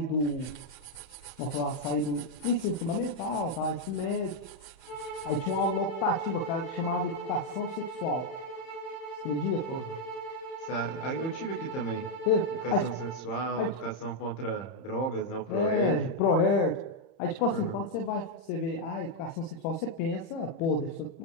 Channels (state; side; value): late; right; 31 ms